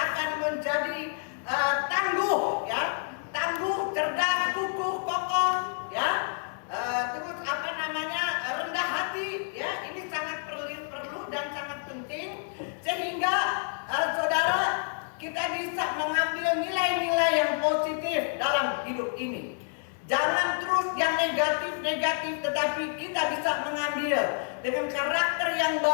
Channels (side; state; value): right; silent; digital silence